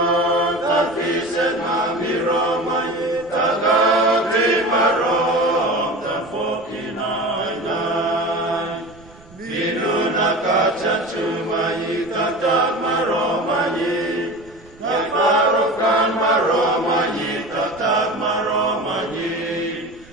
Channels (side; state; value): right; noise; rumble, 24 dB below the sound